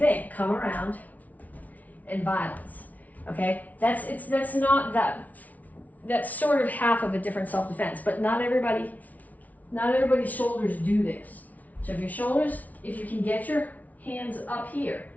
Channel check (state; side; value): late; right; 0.073 ms